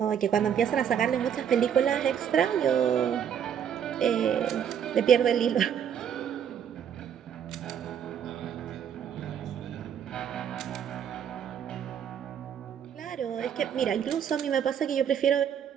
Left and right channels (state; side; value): quieter; left; 8.6 dB